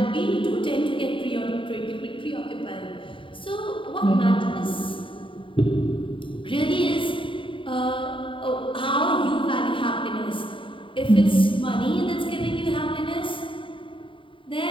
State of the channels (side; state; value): right; late; 0.25 ms